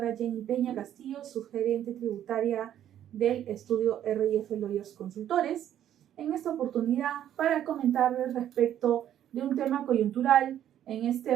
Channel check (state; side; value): quieter; left; 10.9 dB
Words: Jenny Peña Castillo, subgerente tributaria del estudio RIF Lawyers Consultores. En esta oportunidad para comentarles respecto de un tema coyuntural en este